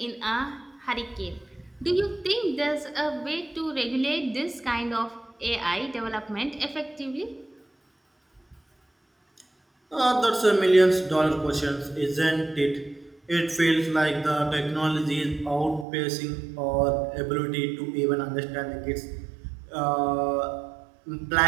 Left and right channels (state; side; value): drops out; left; at 15.9 s